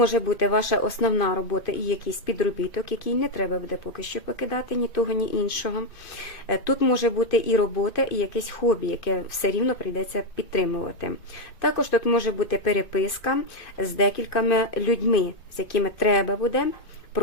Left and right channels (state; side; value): late; right; 2.1 ms